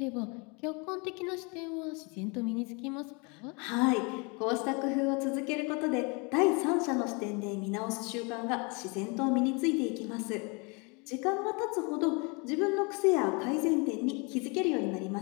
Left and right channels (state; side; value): quieter; right; 31.0 dB